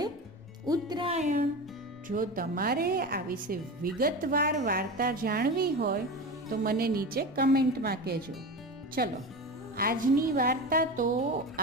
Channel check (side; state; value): both; normal; correlation 0.26